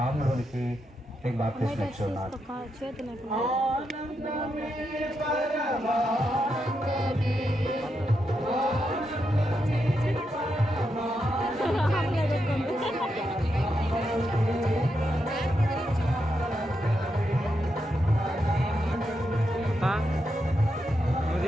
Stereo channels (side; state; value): both; normal; correlation 0.84